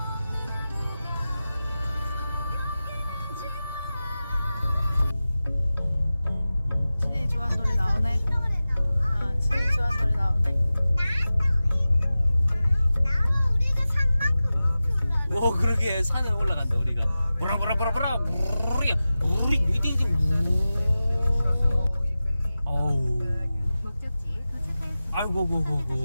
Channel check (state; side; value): inverted; both; correlation -0.95